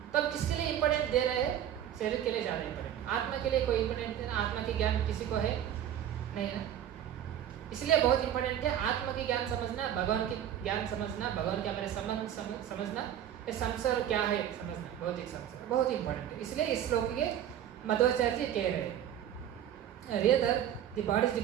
तब किसके लिए इम्पोर्टेंट दे रहे हैं, शरीर के लिए ज़्यादा इम्पोर्टेंट, आत्मा के लिए कोई इम्पोर्टेंट नहीं। आत्मा के ज्ञान किसी को है नहीं है ना, इसलिए बहुत इम्पोर्टेंट है आत्मा के ज्ञान समझना, भगवान के ज्ञान समझना, भगवान के हमारे संबंध समझना, ये संसार क्या है समझना, बहुत ही संसार बहुत ही इम्पोर्टेंट है। इसलिए इस श्लोक के मध्वाचार्य जी कह रहे हैं, rather the body is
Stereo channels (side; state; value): left; quieter; 10.6 dB